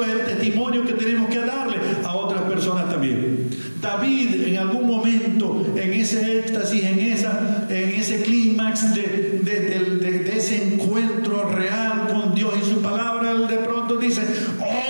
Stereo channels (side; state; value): both; inverted; correlation -1.00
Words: es el testimonio que tenemos que darle a otras personas también. David, en algún momento, en ese éxtasis, en ese clímax de ese encuentro real con Dios y su palabra, él de pronto dice: